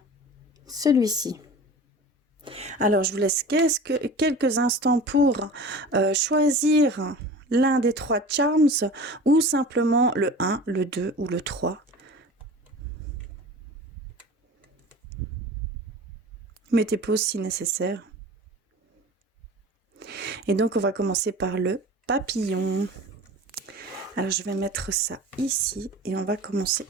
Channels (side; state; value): both; normal; correlation 0.38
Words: celui-ci. Alors, je vous laisse quelques instants pour choisir l'un des 3 charms ou simplement le 1, le 2 ou le 3. Mettez pause si nécessaire. Et donc, on va commencer par le papillon. Alors, je vais mettre ça ici et on va commencer